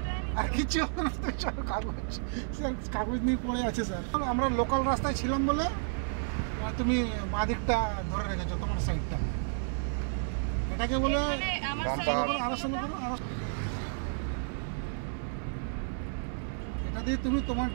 আর কিছু কাগজ নিয়ে পড়ে আছে স্যার। আমরা লোকাল রাস্তায় ছিলাম বলে তুমি বাঁ দিকটা ধরে রেখেছো, তোমার সাইডটা। এটাকে বলে এটা দিয়ে তুমি তোমার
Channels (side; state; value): left; silent; 57 dB below the other